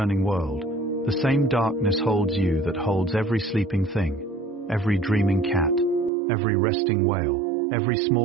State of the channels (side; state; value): left; drops out; at 6.1 s